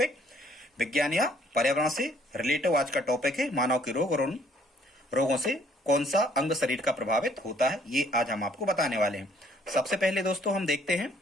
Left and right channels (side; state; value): both; normal; correlation 0.62